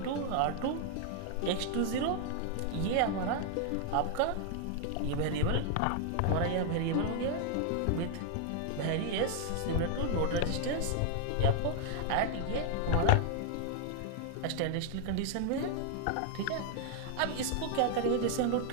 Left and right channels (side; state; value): both; different; correlation 0.00